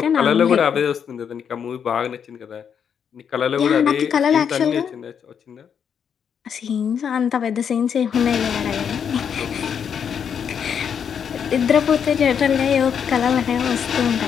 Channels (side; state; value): right; quieter; 7.6 dB